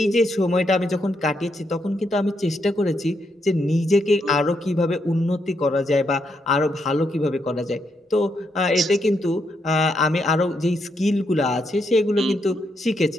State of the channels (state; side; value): normal; both; correlation 0.79